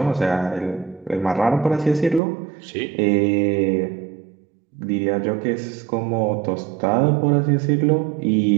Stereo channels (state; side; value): drops out; left; at 2.2 s